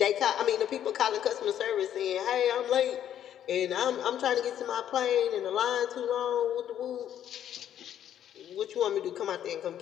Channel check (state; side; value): quieter; right; 10.5 dB